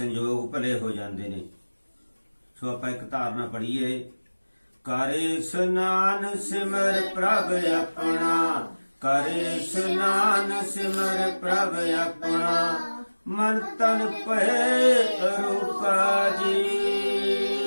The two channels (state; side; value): inverted; both; correlation -1.00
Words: ਭਲੇ ਹੋ ਜਾਂਦੇ ਨੇ। ਸੋ ਆਪਾਂ ਇੱਕ ਧਾਰਨਾ ਪੜ੍ਹੀਏ, ਕਰੇ ਇਸ਼ਨਾਨ ਸਿਮਰ ਪ੍ਰਭ ਆਪਣਾ, ਕਰੇ ਇਸ਼ਨਾਨ ਸਿਮਰ ਪ੍ਰਭ ਆਪਣਾ, ਮਨ ਤਨ ਭਏ ਰੂਪਾ ਜੀ,